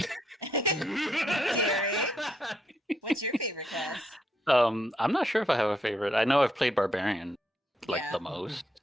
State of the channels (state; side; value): normal; both; correlation 0.76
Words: What's your favorite class? I'm not sure if I have a favorite. I know I've played Barbarian the most.